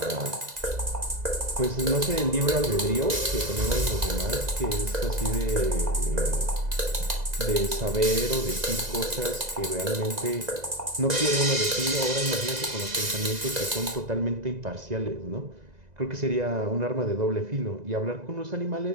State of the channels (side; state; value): left; late; 2.0 ms